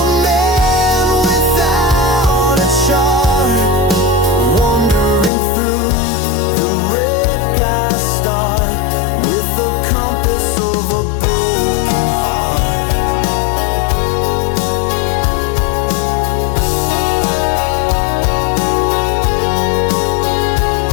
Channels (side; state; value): right; drops out; at 5.3 s